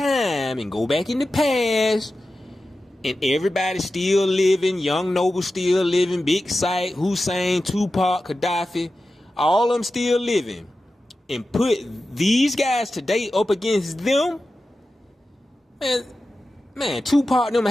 and go back in the past, and everybody still living, Young Noble still living, Big Sight, Hussein, Tupac, Gaddafi, all of them still living, and put these guys today up against them, man, Tupac and them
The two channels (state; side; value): normal; both; correlation 0.93